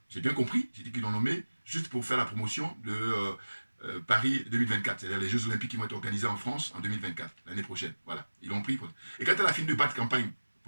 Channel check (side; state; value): both; inverted; correlation -1.00